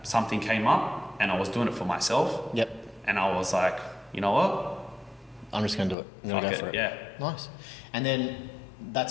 something came up and I was doing it for myself. Yep. And I was like, you know what? I'm just going to do it. I'm going to go for it. Yeah. Nice. And then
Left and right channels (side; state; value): right; drops out; at 6.0 s